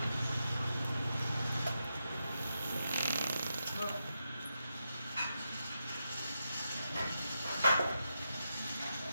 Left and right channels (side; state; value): both; inverted; correlation -0.87